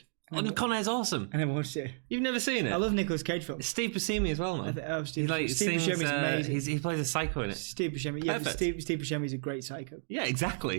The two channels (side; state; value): left; silent; digital silence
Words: Con Air's awesome. I never watched it. You've never seen it? I love Nicolas Cage films. Steve Buscemi as well, man. Steve sings, Buscemi's amazing. He plays a psycho in it. Steve Buscemi. Yeah, Steve Buscemi's a great psycho. Yeah,